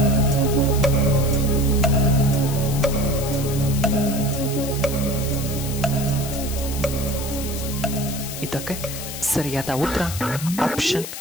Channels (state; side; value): noise; left; hiss, 9 dB below the sound